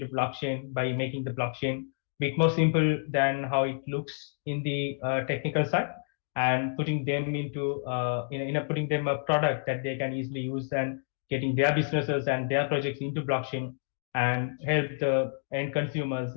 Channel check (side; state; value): right; silent; digital silence